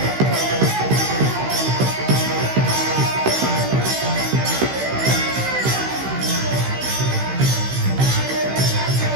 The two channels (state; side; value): late; left; 15 ms